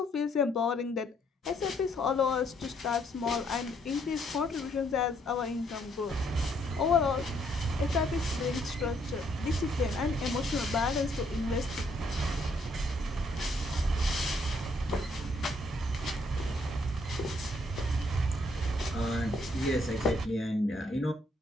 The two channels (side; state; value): both; normal; correlation 0.69